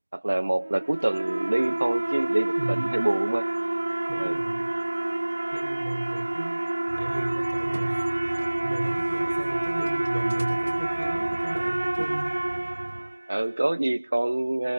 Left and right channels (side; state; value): both; inverted; correlation -1.00